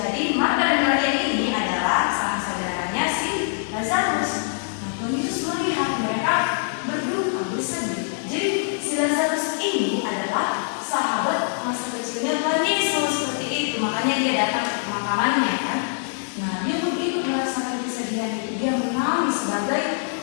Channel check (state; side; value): silent; right; digital silence